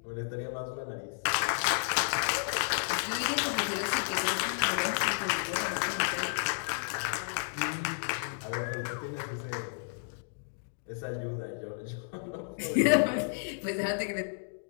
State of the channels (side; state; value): right; silent; digital silence